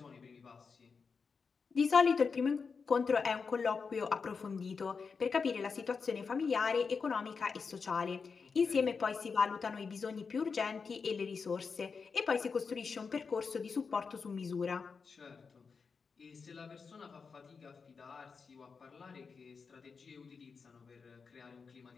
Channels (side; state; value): right; quieter; 5.3 dB